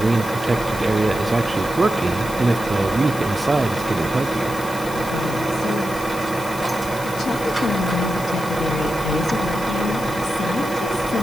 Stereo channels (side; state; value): left; noise; hiss, 14 dB below the sound